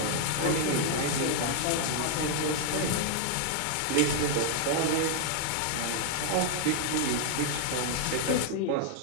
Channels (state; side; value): different; both; correlation 0.00